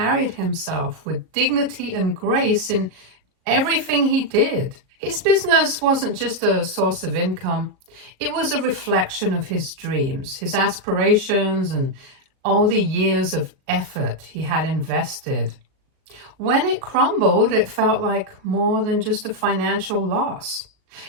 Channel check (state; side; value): late; left; 37 ms